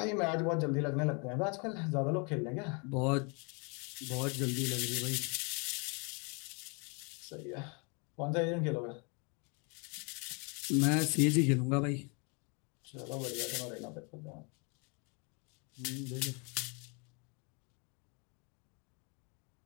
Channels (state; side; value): quieter; right; 33.3 dB